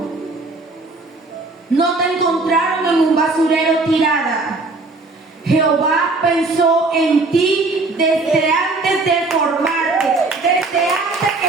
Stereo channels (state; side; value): quieter; left; 3.4 dB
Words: No te encontraron en un basurero tirada. Jehová pensó en ti desde antes de formarte, desde antes